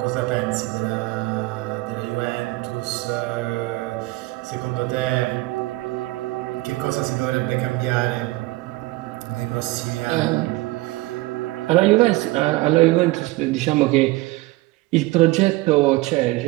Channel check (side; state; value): left; quieter; 20.7 dB